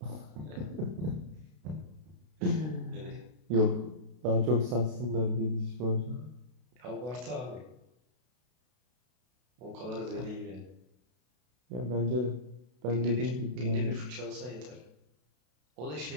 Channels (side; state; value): left; late; 32 ms